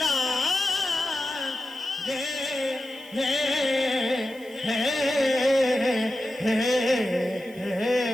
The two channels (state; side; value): noise; right; hiss, 24 dB below the sound